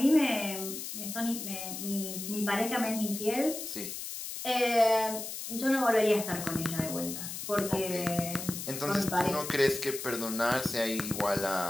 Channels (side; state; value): left; noise; hiss, 7 dB below the sound